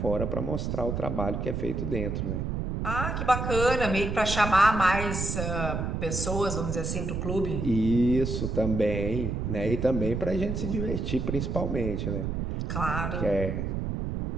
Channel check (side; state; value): right; noise; rumble, 2 dB below the sound